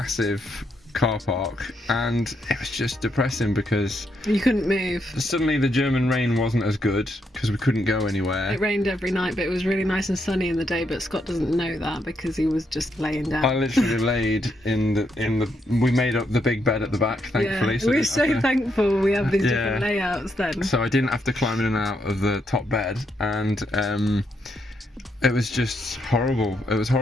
car park, and it was just depressing because you couldn't move. Suddenly the German rain wasn't as good because we couldn't go anywhere. It rained every night, but it was really nice and sunny in the day, but Scott doesn't know that because he was just laying down. I literally laid in the we made up the big bed at the back, thankfully. Yeah, so we're so thankful we have these different layouts then. So I didn't have to climb in and out of the top bed, and it was just horrible. It was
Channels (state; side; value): normal; both; correlation 0.78